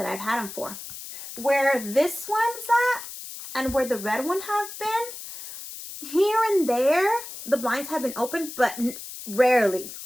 I've had them for. Where this one's at, and where the red one have been, here and there, the blinds have been open, but rarely,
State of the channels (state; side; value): noise; left; hiss, 11 dB below the sound